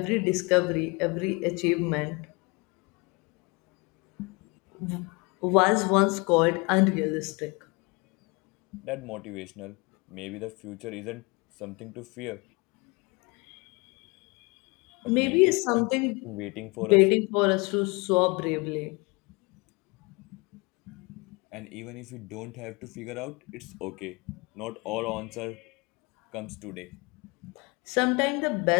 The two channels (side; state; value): right; quieter; 28.1 dB